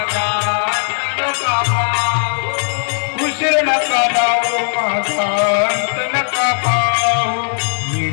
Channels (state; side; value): silent; right; digital silence